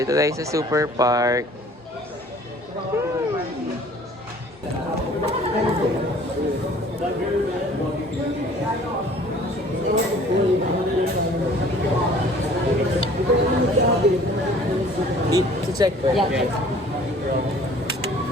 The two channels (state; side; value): normal; both; correlation 0.52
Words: tayo sa Super Park. Check ko. Yeah.